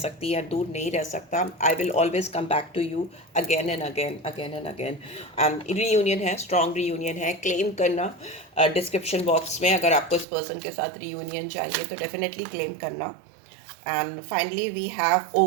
या दूर नहीं रह सकता। I will always come back to you again and again, again and again. And reunion है, स्ट्रॉन्ग रीयूनियन है, क्लेम करना डिस्क्रिप्शन बॉक्स में। अगर आपको इस पर्सन के साथ रीयूनियन चाहिए तो डेफिनेटली क्लेम करना। And finally we have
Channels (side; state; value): left; drops out; at 10.2 s